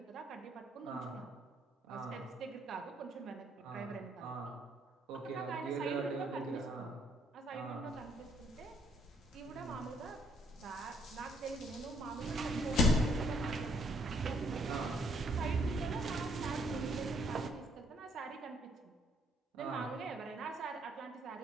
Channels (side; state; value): both; normal; correlation 0.67